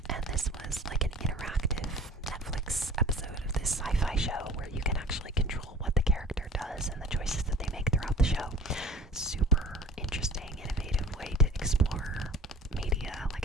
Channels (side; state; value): both; normal; correlation 0.44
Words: And this was like an interactive Netflix episode of this sci-fi show where you can actually control what the character does and the choices that they make throughout the show. Super interesting, innovative way to explore media, like